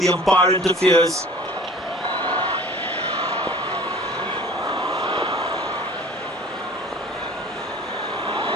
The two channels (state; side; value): normal; both; correlation 0.45